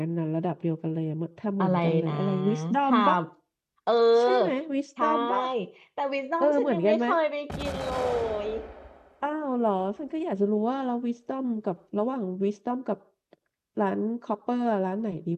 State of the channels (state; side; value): identical; both; correlation 1.00